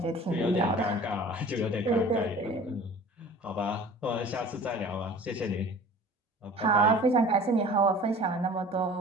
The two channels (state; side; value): normal; both; correlation 0.44